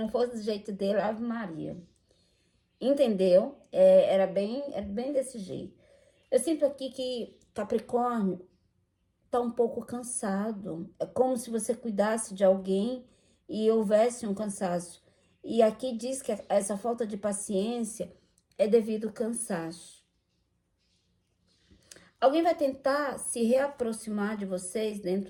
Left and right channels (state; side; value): identical; both; correlation 1.00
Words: fosse do jeito dele, Ave Maria. Entendeu? Era bem desse jeito. Eu sinto aqui que Capricórnio tá um pouco cansado. É como se você cuidasse de alguém e houvesse um cansaço. E aqui diz que essa falta de paciência é devido ao cansaço. Alguém vai tentar se reaproximar de vocês